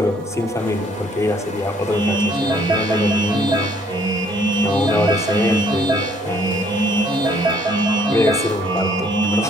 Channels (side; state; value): both; normal; correlation 0.62